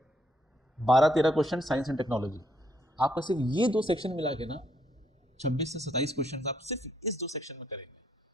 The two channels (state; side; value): normal; both; correlation 0.72